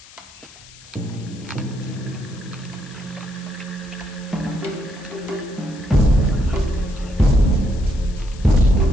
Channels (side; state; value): left; noise; hiss, 21 dB below the sound